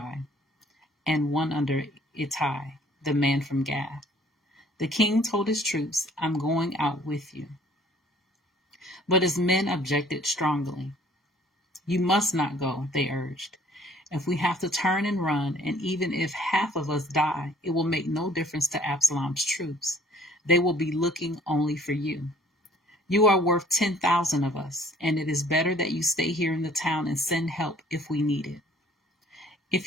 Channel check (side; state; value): both; normal; correlation 0.57